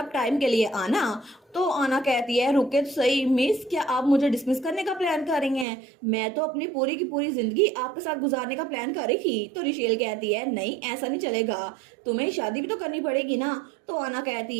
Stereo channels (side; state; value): left; drops out; at 5.7 s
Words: टाइम के लिए आना। तो आना कहती है रुके तो सही मिस, क्या आप मुझे डिसमिस करने का प्लान कर रही हैं? मैं तो अपनी पूरी की पूरी जिंदगी आपके साथ गुजारने का प्लान कर रही थी। तो रिशेल कहती है नहीं ऐसा नहीं चलेगा, तुम्हें शादी भी तो करनी पड़ेगी ना। तो आना